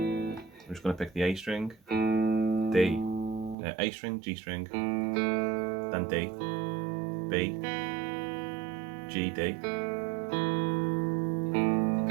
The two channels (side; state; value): left; drops out; at 3.6 s